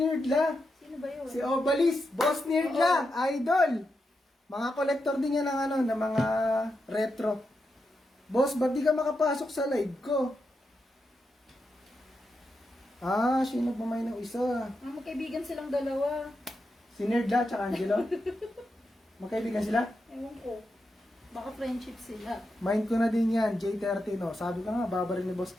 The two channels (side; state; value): both; normal; correlation 0.86